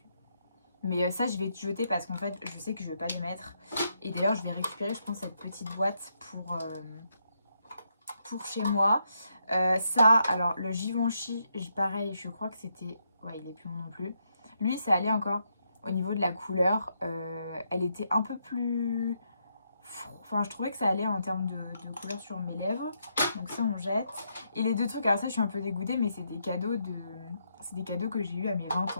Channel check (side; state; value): both; inverted; correlation -0.79